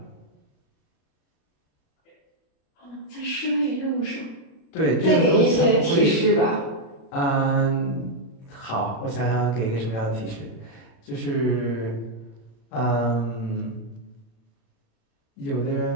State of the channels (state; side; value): late; right; 36 ms